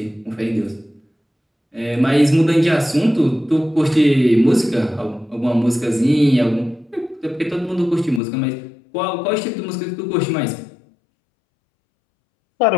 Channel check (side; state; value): right; drops out; at 8.2 s